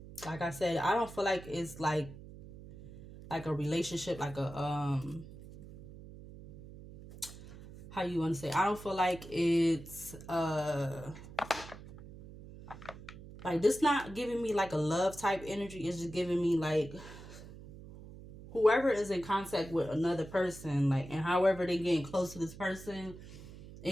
like I said, I don't feel like it's like a relationship, like a how you want to say, I don't feel like it's like this not giving me like a love type energy. It's just giving me like whoever is in contact with another person, like, and however they getting close to this person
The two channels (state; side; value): noise; right; hum, 16 dB below the sound